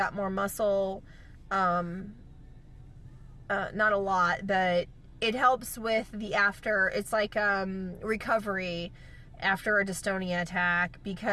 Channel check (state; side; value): identical; both; correlation 1.00